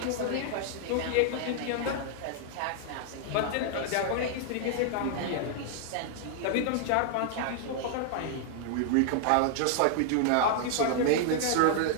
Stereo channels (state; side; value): different; both; correlation 0.00